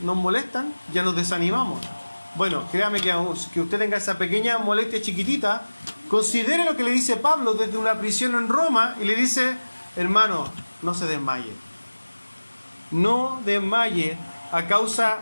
molestan, ya nos desanimamos. Bueno, créame que usted tenga esa pequeña molestia chiquitita, considere lo que le dice Pablo desde una prisión en Roma y le dice: hermano, no se desmaye. No desmaye a causa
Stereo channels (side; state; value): both; inverted; correlation -1.00